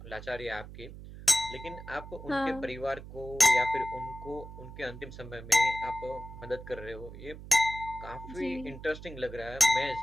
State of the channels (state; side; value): noise; right; hum, 13 dB below the sound